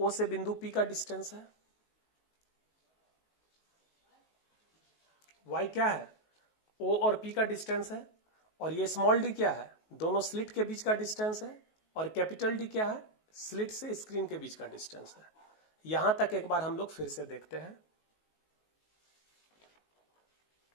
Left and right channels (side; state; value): right; late; 19 ms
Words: से बिंदु P का डिस्टेंस है, y क्या है, O और P का डिस्टेंस है, और ये स्मॉल d क्या है, दोनों स्लिट के बीच का डिस्टेंस है, और कैपिटल D क्या है, स्लिट से स्क्रीन के बीच का डिस्टेंस है। यहां तक एक बार हम लोग फिर से देखते हैं।